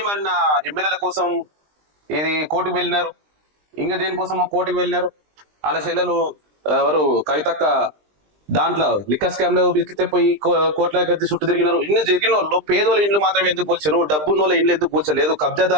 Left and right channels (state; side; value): late; left; 20 ms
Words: మారిన ఎమ్మెల్యేల కోసం ఇది కోర్టుకు వెళ్ళినారు, ఇంకా దేనికోసం కోర్టుకు వెళ్ళినారు. వాళ్ళ చెల్లెలు ఎవరు కవితక్క దాంట్లో లిక్కర్ స్కామ్ లో బిక్కితే పోయి కోట్ల చుట్టూ తిరిగినారు. ఇన్ని జరిగిన వాళ్ళు పేదోళ్ళ ఇండ్లు మాత్రమే ఎందుకు కూల్చారు, డబ్బున్న వాళ్ళ ఇండ్లు ఎందుకు కూల్చలేదు,